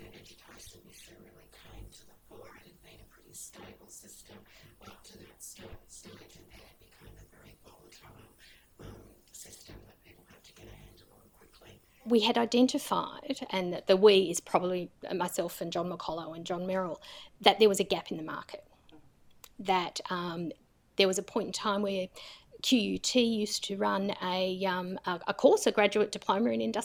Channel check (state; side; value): identical; both; correlation 1.00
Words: issue really came to the fore. It had been a pretty stable system up to that stage, and then it became a very volatile system that people had to get a handle on quickly. We had identified, and the we is probably myself and John McCollough and John Merrill, that there was a gap in the market, that there was a point in time where QUT used to run a course, a graduate diploma in